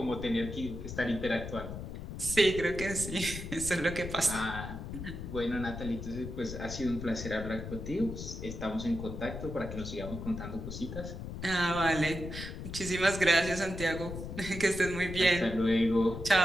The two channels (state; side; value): noise; left; rumble, 8 dB below the sound